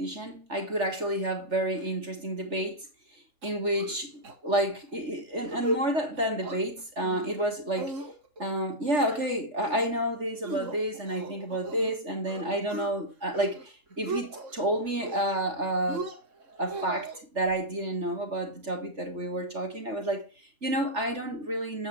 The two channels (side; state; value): left; late; 3.4 ms